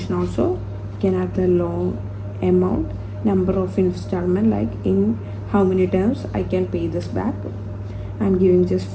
also. You can add the loan amount, number of installment, like in how many times I can pay this back. I'm giving just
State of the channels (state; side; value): identical; both; correlation 1.00